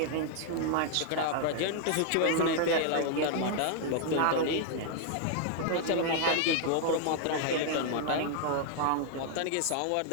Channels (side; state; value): both; different; correlation 0.00